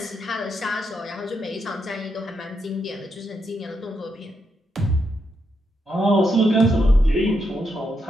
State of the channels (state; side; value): normal; both; correlation 0.81